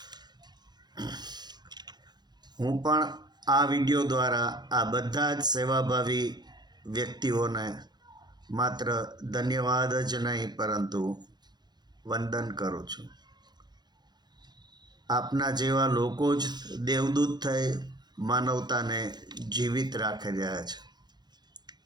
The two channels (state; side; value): late; left; 0.21 ms